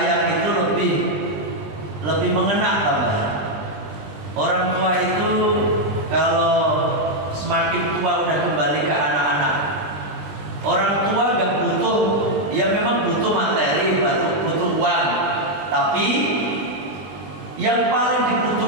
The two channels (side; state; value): left; late; 20 ms